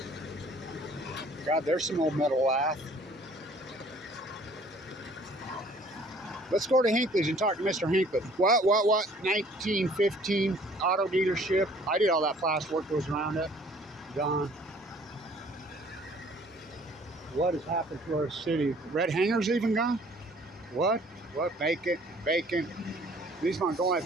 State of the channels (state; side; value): normal; both; correlation 0.55